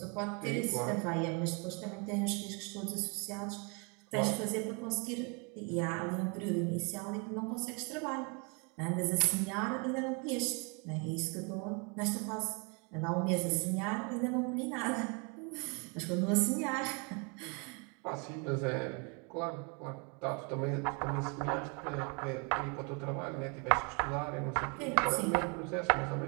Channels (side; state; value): left; quieter; 33.2 dB